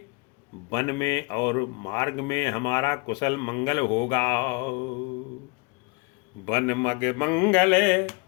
वन में और मार्ग में हमारा कुशल मंगल होगा। वन मग मंगल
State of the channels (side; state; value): right; quieter; 29.5 dB